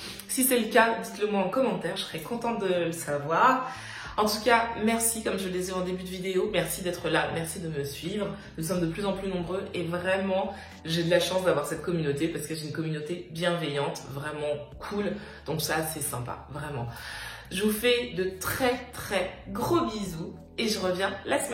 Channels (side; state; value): both; identical; correlation 1.00